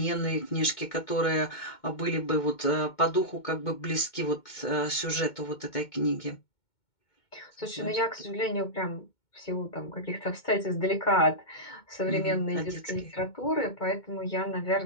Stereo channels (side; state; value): right; late; 2.2 ms